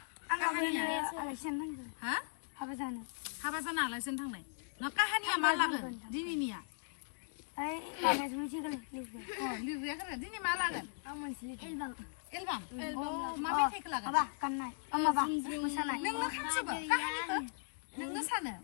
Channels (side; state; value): right; silent; digital silence